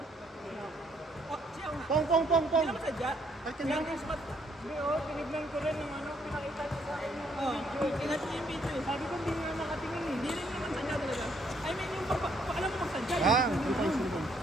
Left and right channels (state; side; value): normal; both; correlation 0.69